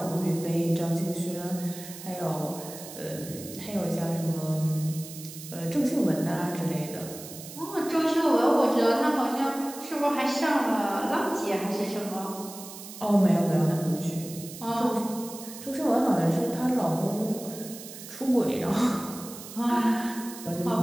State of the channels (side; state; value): right; noise; hiss, 13 dB below the sound